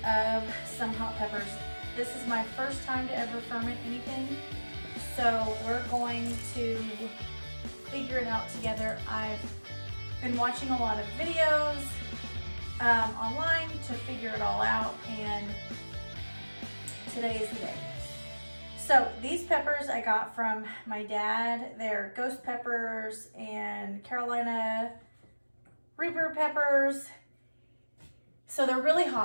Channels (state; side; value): inverted; both; correlation -1.00